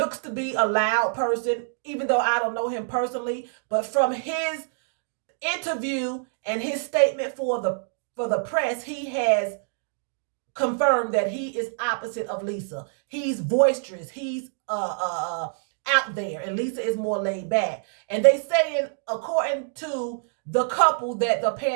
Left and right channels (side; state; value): left; silent; digital silence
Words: to be a loud person, even though I don't know him personally. But from his interview and his statement for the press, he has confirmed that he is opposite of Lisa. He's boisterous. He's out there, and Lisa is more laid back. And they saying, according to the couple, that the